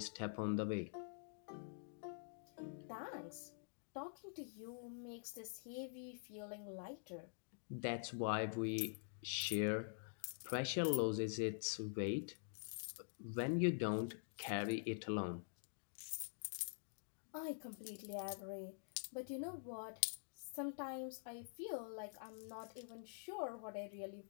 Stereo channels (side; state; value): right; silent; digital silence